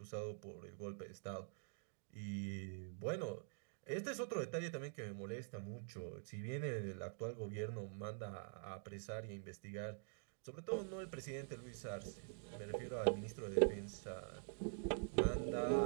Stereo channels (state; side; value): silent; left; digital silence